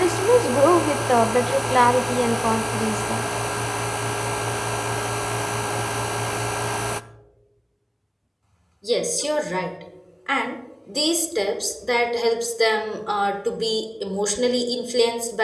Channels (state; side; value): identical; both; correlation 1.00